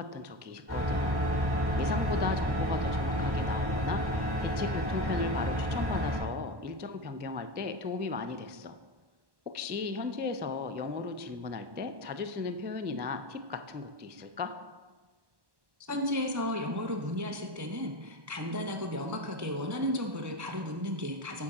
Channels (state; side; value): late; left; 1.1 ms